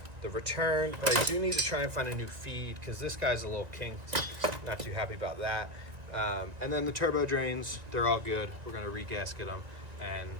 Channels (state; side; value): late; left; 1.8 ms